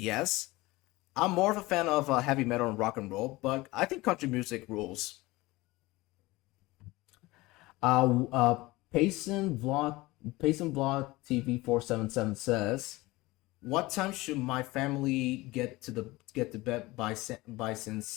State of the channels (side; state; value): right; quieter; 20.6 dB